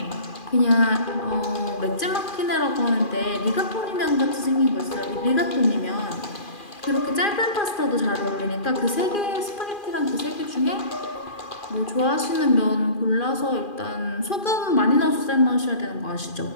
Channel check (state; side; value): late; right; 2.4 ms